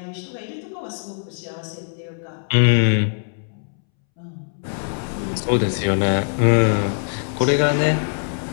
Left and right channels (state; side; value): silent; right; 64 dB below the other